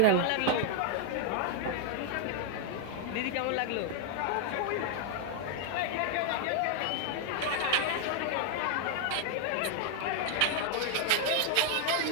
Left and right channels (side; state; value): both; different; correlation 0.00